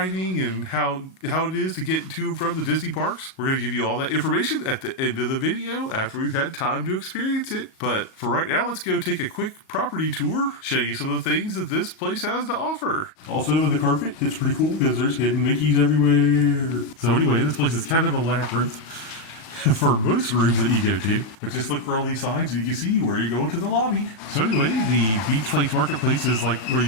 and how it is to get to and from the Disney parks. We're going to give you all that information at the end of the video after we've had time to experience it. But for right now, let's go take a quick property tour, show you some of the things that this place has to offer. Also, the carpet, it's pretty cool because there's hidden Mickeys everywhere. So anyway, this place is kind of a labyrinth for most rooms that you go to. But just look for all these signs and you can see where you're going to the lobby. So anyway, the Beach Place Marketplace is like where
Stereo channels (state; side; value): late; right; 37 ms